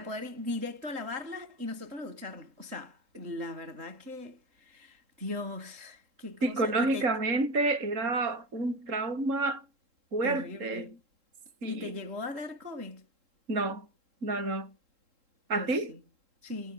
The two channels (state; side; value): late; left; 3.7 ms